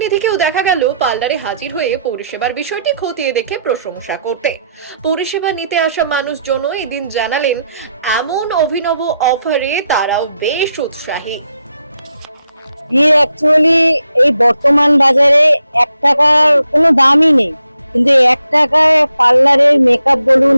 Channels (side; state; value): both; inverted; correlation -0.81